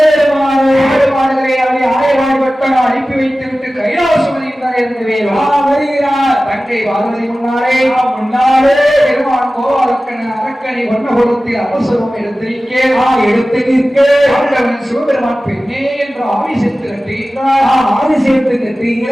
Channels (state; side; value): normal; both; correlation 0.96